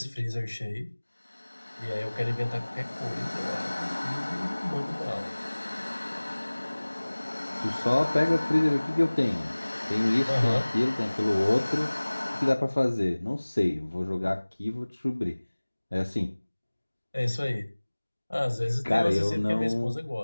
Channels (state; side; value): inverted; both; correlation -1.00